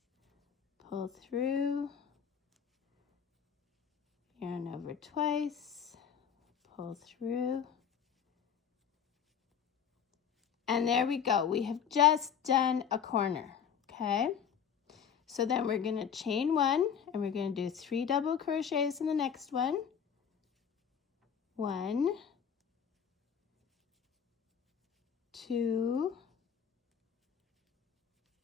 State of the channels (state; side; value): quieter; right; 7.8 dB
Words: pull through, yarn over twice, pull through, And there we go. We have just done a corner, okay? So then we're going to chain 1, and we're going to do 3 double crochets in the next one. 1, 2,